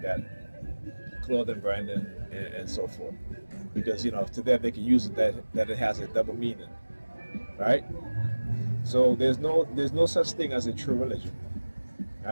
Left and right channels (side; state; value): both; inverted; correlation -1.00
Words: that, clothing branding and so forth, because to them they can use it that it has a double meaning, right? So there's no such thing as a true religion.